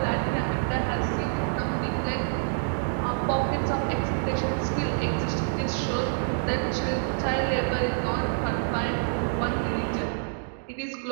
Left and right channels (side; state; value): left; silent; digital silence